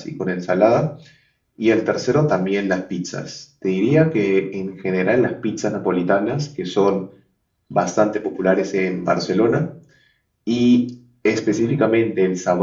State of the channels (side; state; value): both; identical; correlation 1.00